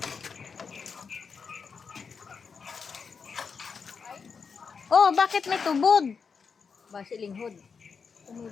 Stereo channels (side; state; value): right; quieter; 5.7 dB